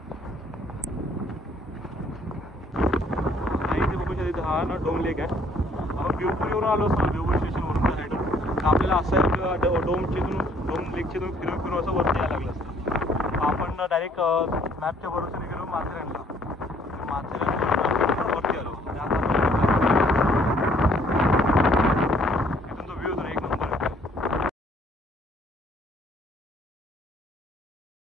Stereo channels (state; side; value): normal; both; correlation 0.62